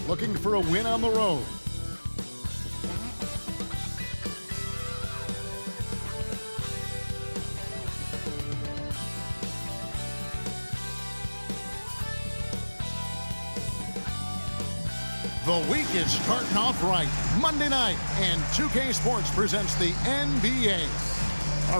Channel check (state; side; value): inverted; both; correlation -1.00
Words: looking for a win on the road. The week is starting off right. Monday night, and 2K Sports presents the NBA.